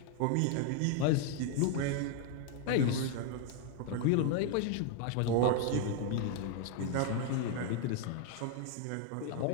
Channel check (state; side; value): different; both; correlation 0.00